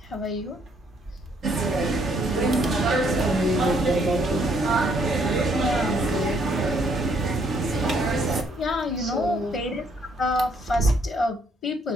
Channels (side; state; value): both; normal; correlation 0.68